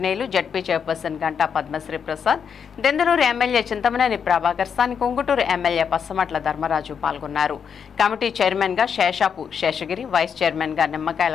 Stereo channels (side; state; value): right; quieter; 7.1 dB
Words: ZP chairperson Ganta Padmasri Prasad, Denduluru MLA Chintamaneni Prabhakar, స్థానిక ఉంగుటూరు ఎమ్మెల్యే పచ్చమట్ల ధర్మరాజు పాల్గొన్నారు. కమిటీ చైర్మన్ గా శేషాపు శేషగిరి, వైస్ చైర్మన్ గా